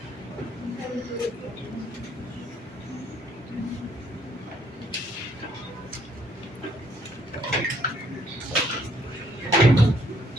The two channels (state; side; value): normal; both; correlation 0.66